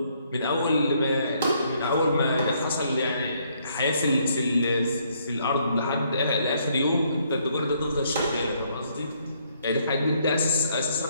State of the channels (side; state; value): both; inverted; correlation -0.69